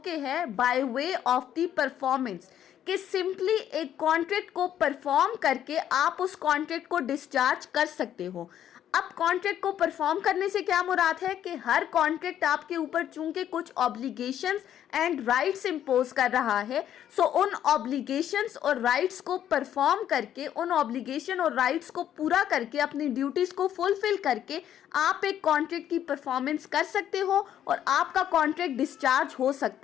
है by way of the performance, कि सिंपली एक कॉन्ट्रैक्ट को परफॉर्म करके आप उस कॉन्ट्रैक्ट को डिस्चार्ज कर सकते हो। अब कॉन्ट्रैक्ट को परफॉर्म करने से क्या मुराद है कि हर कॉन्ट्रैक्ट आपके ऊपर चूंकि कुछ ऑब्लिगेशंस एंड राइट्स इम्पोज कर रहा है, सो उन ऑब्लिगेशंस और राइट्स को परफॉर्म करके, उन ऑब्लिगेशन और राइट्स को पूरा करके, अपनी ड्यूटीज़ को फुलफिल करके आप एक कॉन्ट्रैक्ट की परफॉर्मेंस कर सकते हो और आपका कॉन्ट्रैक्ट डिस्चार्ज हो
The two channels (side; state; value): right; quieter; 10.6 dB